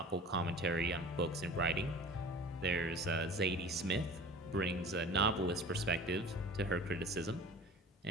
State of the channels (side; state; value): both; normal; correlation 0.42